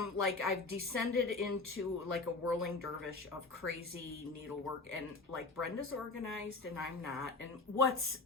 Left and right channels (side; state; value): right; quieter; 3.5 dB